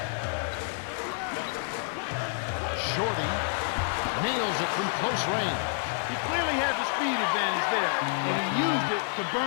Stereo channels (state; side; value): silent; right; digital silence